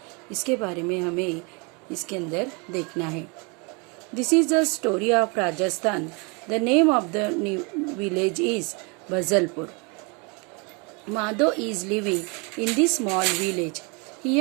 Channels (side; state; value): left; quieter; 31.7 dB